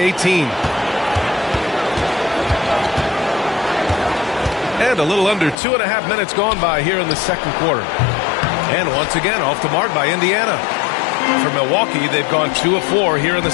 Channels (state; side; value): drops out; right; at 5.6 s